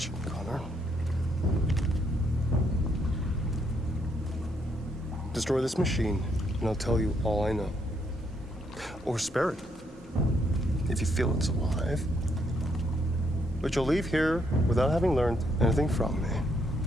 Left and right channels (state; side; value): normal; both; correlation 0.73